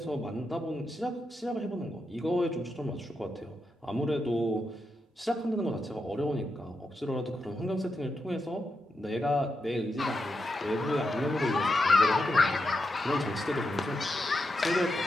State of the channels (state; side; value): normal; both; correlation 0.86